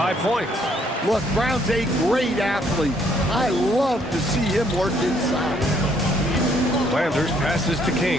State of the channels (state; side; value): normal; both; correlation 0.67